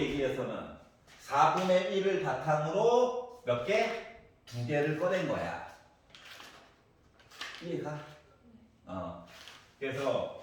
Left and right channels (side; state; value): both; identical; correlation 1.00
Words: 4분의 1을 바탕으로 몇 개? 2개를 꺼낸 거야. 이해가? 그래서